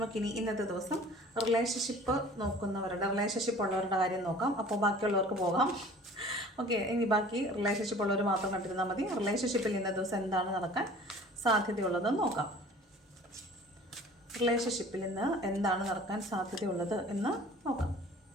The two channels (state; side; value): normal; both; correlation 0.46